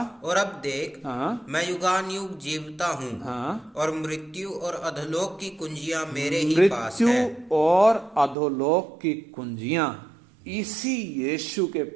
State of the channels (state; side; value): drops out; left; at 8.3 s